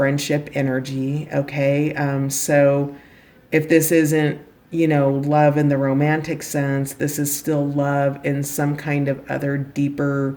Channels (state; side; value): identical; both; correlation 1.00